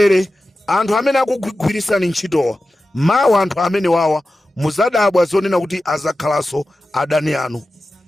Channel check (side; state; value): both; normal; correlation 0.93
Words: anthu amene akugwirisani ntchitowa. Mawa anthu amene wawa muzadabwa zonena kuti azakhalaso adani anu.